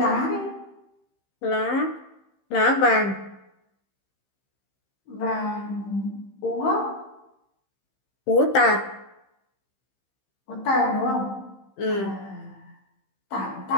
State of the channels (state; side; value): late; right; 15 ms